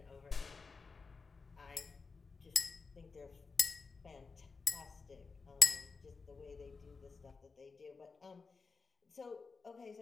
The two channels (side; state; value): right; quieter; 4.6 dB